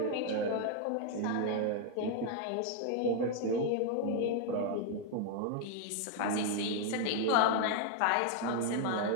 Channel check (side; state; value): both; different; correlation 0.00